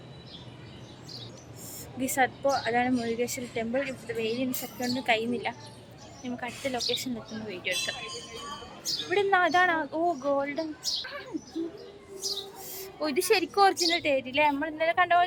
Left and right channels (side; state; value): both; identical; correlation 1.00